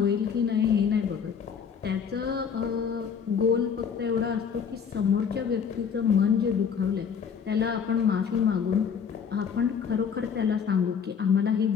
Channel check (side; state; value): right; quieter; 6.9 dB